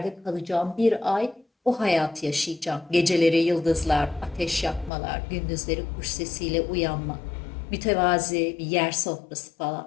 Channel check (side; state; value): right; drops out; at 4.9 s